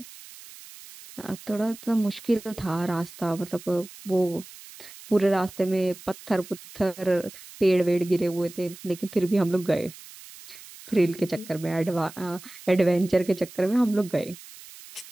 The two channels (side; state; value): right; noise; hiss, 18 dB below the sound